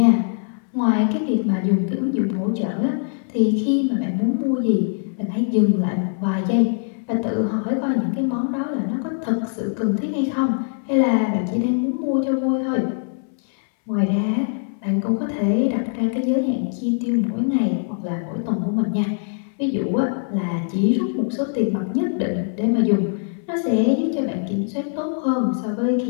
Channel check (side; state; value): right; silent; 64 dB below the other